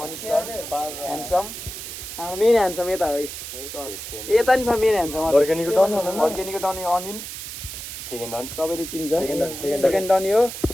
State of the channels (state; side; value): noise; right; hiss, 9 dB below the sound